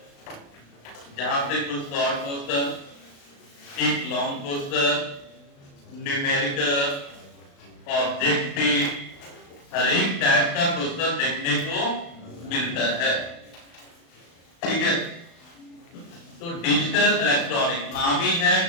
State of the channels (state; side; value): late; right; 36 ms